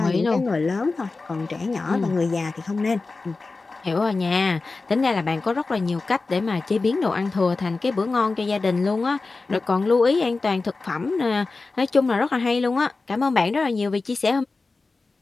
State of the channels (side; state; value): right; quieter; 3.8 dB